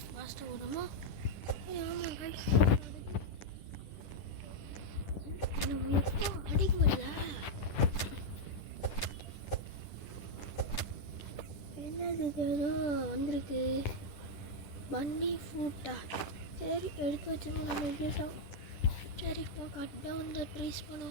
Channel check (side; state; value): right; late; 10 ms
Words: ஃபாஸ்ட்டாக விடுமா? ஆமாம் கைஸ், என்ன எப்போ அடிக்க முடியல. என்னது இது ஏதோ வந்திருக்கு, பன்னி ஃபுட்டா? சரி எடுத்து வச்சுருவோம் நம்ம வீட்டோம். சரி இப்போ கட் டவுன் த ட்ரீஸ்